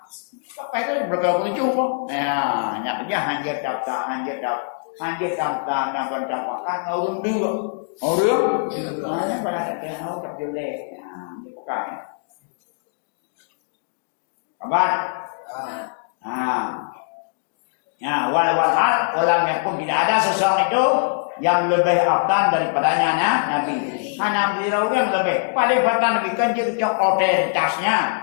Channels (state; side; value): silent; right; digital silence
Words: Kapan itu berkali-kali cuma. Ya, hanya kerja hanjir daftar nampak kan orang dua. Hanya pada tahu tak boleh. Ya, ni bukan. Kabar? Ya, walam yakun tidak ada seseorang itu yang lebih afdan daripadanya Nabi. Hanya beliau yang lebih paling afdan Nabi kanjeng otoritasnya.